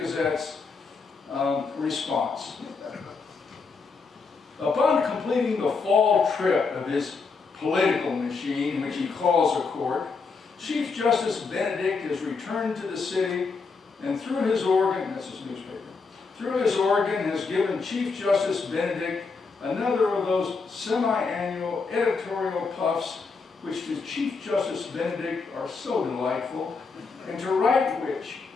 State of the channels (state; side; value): quieter; right; 4.6 dB